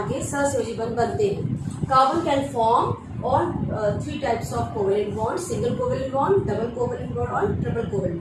के सहसंयोजी बंध बनते हैं। Carbon can form on 3 types of covalent bond, single covalent bond, double covalent bond और ट्रिपल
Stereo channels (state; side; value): identical; both; correlation 1.00